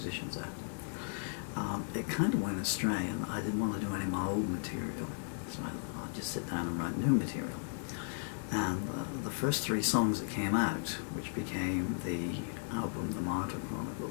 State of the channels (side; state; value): right; silent; digital silence